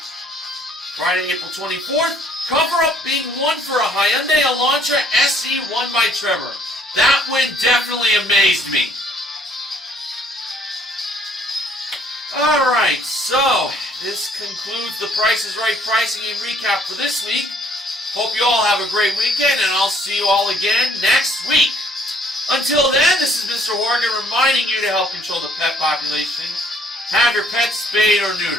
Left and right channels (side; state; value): both; normal; correlation 0.62